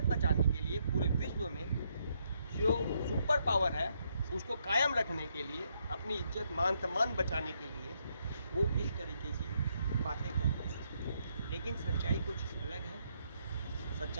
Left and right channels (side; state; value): both; inverted; correlation -0.75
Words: बचाने के लिए पूरे विश्व में जो सुपर पावर है उसको कायम रखने के लिए, अपनी इज्जत मान सम्मान बचाने के लिए वो इस तरीके की बातें करते हैं। लेकिन सच्चाई कुछ अलग है।